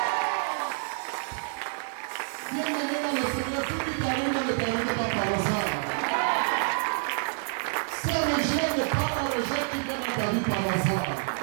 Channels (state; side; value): silent; left; digital silence